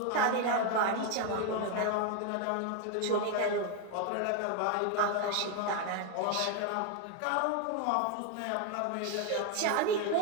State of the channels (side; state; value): both; different; correlation 0.01